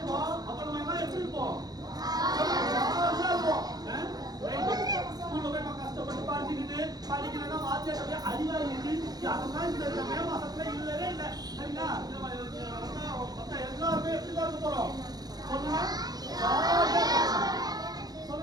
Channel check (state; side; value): late; left; 0.19 ms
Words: அப்ப நம்ம எல்லாம் எப்படி இருப்போம்? ஸ்கூல்ல போய் நம்ம கஷ்டப்பட்டு படிச்சுக்கிட்டு படிக்கிறதா வாத்தியாட்ட அடிவாங்கிட்டு அதெல்லாம் இந்த மே மாசத்துல இல்லவே இல்லை. சரிங்களா? எல்லாருமே எப்படிதான் இருக்க போறோம்? சொல்லுங்க.